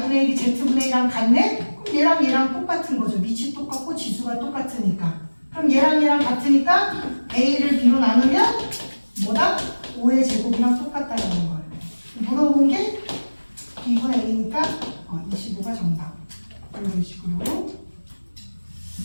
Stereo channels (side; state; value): both; inverted; correlation -1.00